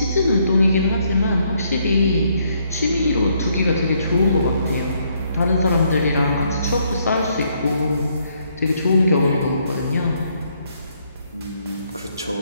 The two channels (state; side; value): inverted; both; correlation -0.71